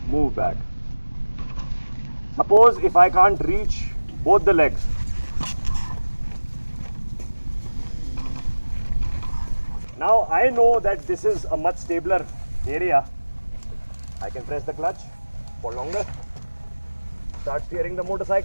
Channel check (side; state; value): both; inverted; correlation -1.00